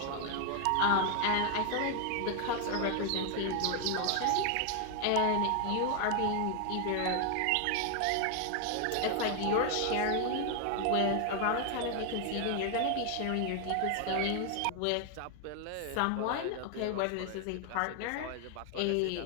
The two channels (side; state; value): both; different; correlation 0.00